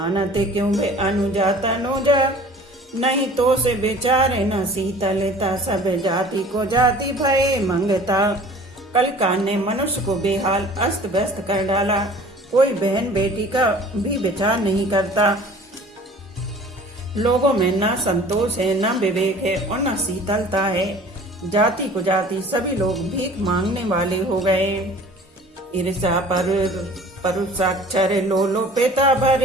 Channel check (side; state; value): both; normal; correlation 0.47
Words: क्यों वे अनुजा तनुजा। नहीं तो से बेचारे न शीतलता, सब जाति को जाति भय मंगता। कलिकाल ने मनुष्य को बेहाल अस्त व्यस्त कर डाला, कोई बहन बेटी का भी विचार नहीं करता। लोगों में न संतोष है, न विवेक है और न शीतलता है। जाति को जाति, सभी लोग भीख मांगने वाले हो गए। ईर्षा परुषाक्षर लोलोपेता,